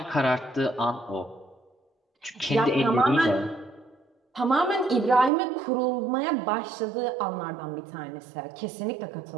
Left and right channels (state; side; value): drops out; left; at 5.3 s